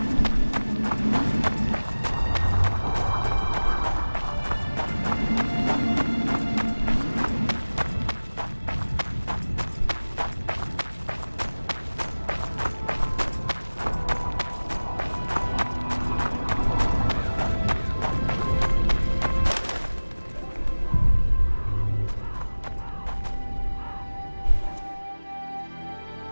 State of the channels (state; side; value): inverted; both; correlation -1.00